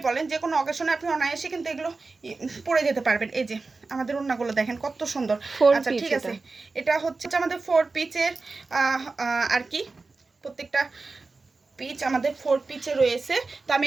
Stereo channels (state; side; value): quieter; left; 3.9 dB